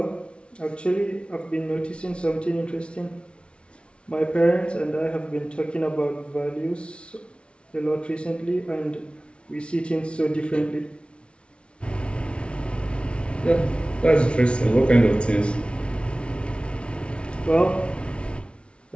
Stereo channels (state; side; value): late; right; 0.059 ms